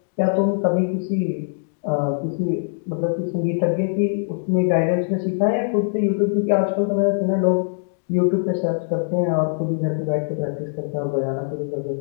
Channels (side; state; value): right; silent; digital silence